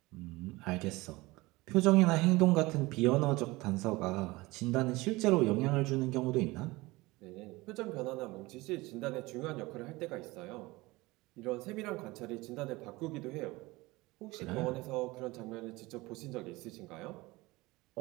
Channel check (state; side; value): quieter; left; 21.5 dB